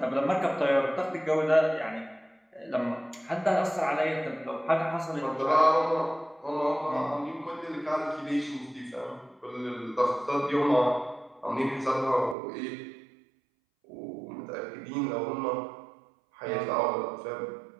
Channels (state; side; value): drops out; left; at 12.4 s